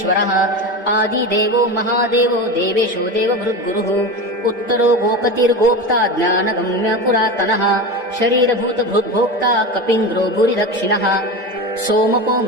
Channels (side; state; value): both; normal; correlation 0.24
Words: आदिदेवो महादेवो देवेशो देवभृद्गुरुः उत्तरो गोपतिर्गोप्ता ज्ञानगम्य पुरातनः शरीरभूतभृद्भोक्ता कपीन्द्रो भूरिदक्षिणः सोमपो